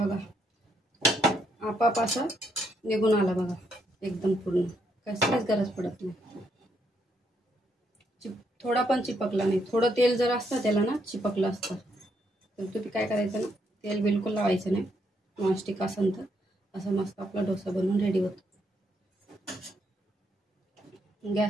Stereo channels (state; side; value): normal; both; correlation 0.75